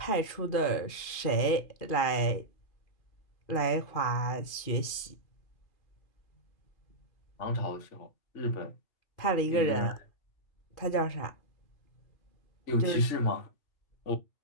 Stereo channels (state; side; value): late; right; 2.4 ms